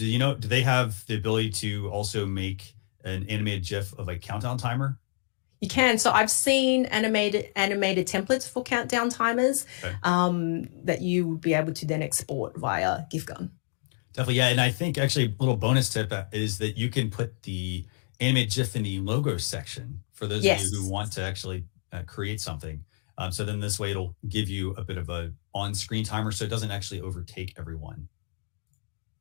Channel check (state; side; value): silent; right; digital silence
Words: they have the ability to also make an animated GIF of a countdown timer? You can. So I've seen animated templates for countdown timers that you would be able to then export via GIF Gun. Definitely, yeah. And I think actually a little bonus tip is that you can put the animated GIF in the logo section for those of you who want to actually create something. So then this way it'll give you a bit of a on-screen timer so it doesn't actually overtake everyone.